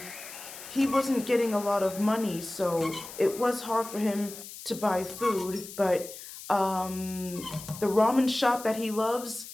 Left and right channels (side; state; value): left; noise; hiss, 13 dB below the sound